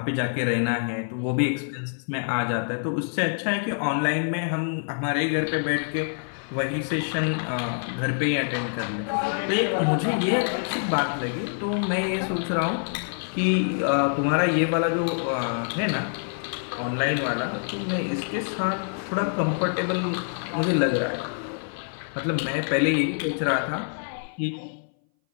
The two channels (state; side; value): silent; right; 59 dB below the other